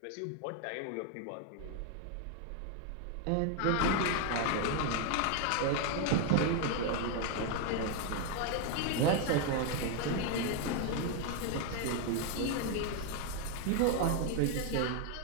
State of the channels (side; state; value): both; different; correlation 0.00